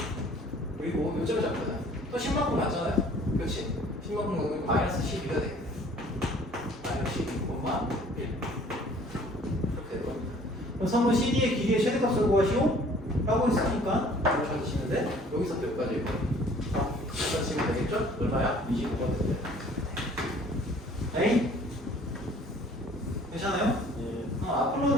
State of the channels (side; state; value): both; normal; correlation 0.54